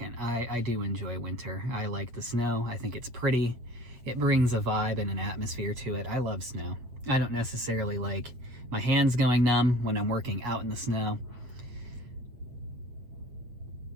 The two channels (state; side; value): late; left; 8.1 ms